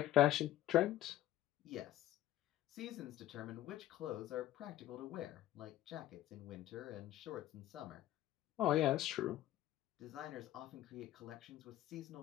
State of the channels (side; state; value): right; quieter; 13.7 dB